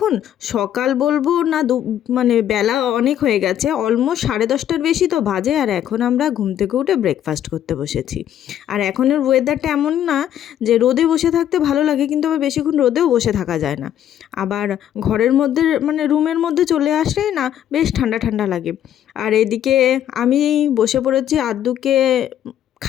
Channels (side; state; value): right; quieter; 10.8 dB